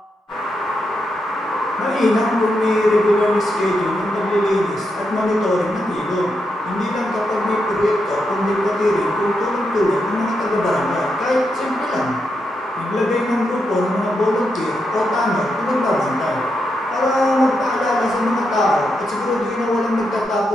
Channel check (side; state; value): both; normal; correlation 0.83